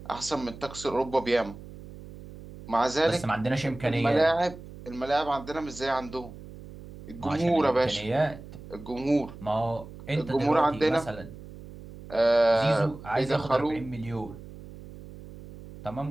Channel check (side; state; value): right; noise; hum, 15 dB below the sound